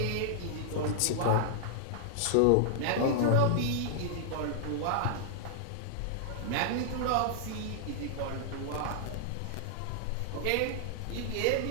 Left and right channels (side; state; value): both; different; correlation -0.01